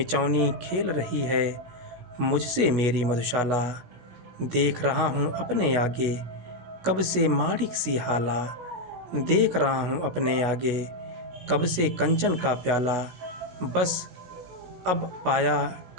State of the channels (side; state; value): left; late; 16 ms